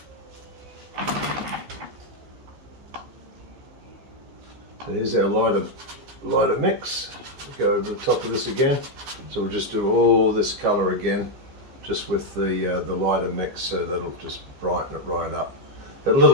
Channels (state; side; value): late; left; 15 ms